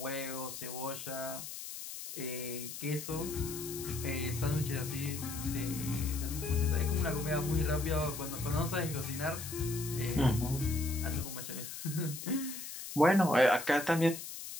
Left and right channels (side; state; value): left; noise; hiss, 9 dB below the sound